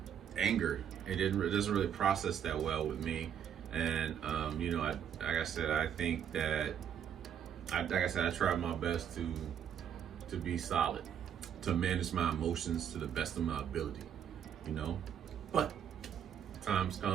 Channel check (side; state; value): left; quieter; 8.9 dB